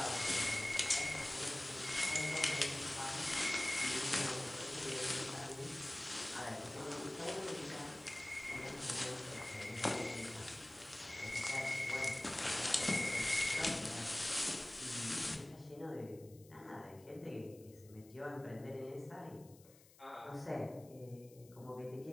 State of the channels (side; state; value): left; noise; hiss, 24 dB below the sound